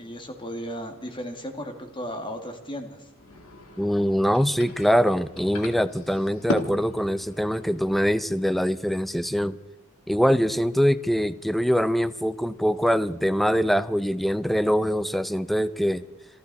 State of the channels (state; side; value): normal; both; correlation 0.95